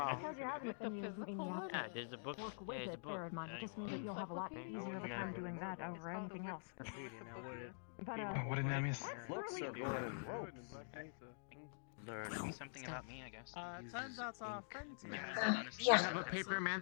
Because you have it, The then you physical mean you have one? to Yeah, there's a book. work with Yeah, there's it. a book. Bear in mind, it just means that you'll have a lot easier of a time doing that over anything else. But What did I miss? that's really cool. learn something about me, I guess. Turns out our friends here. Yeah. I have a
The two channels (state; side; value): silent; right; digital silence